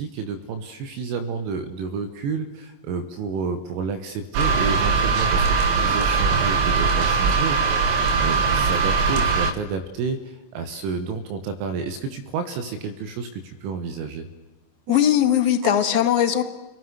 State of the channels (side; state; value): left; late; 21 ms